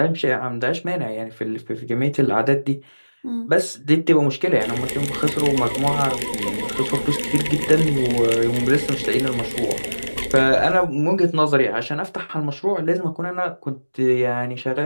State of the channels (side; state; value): both; inverted; correlation -1.00